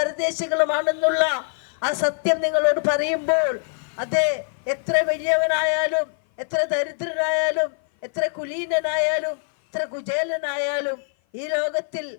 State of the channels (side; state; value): right; silent; 56 dB below the other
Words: ആ സത്യം നിങ്ങളോട് പറയുമ്പോൾ, അതെ, എത്ര വലിയവനായാലും എത്ര ദരിദ്രനായാലും എത്ര കുലീനനായാലും എത്ര കുചേലനായാലും ഈ ലോകത്തിൽ